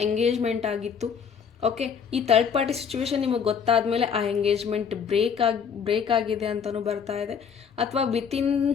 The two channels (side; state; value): right; quieter; 6.9 dB